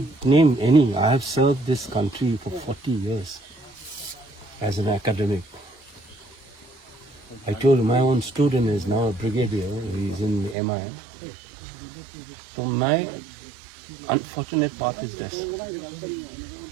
name any. I have served this country for 40 years as an academic. I told you, my own student is now a brigadier. He's in MI. So my unfortunate part is this.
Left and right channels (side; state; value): left; drops out; at 10.6 s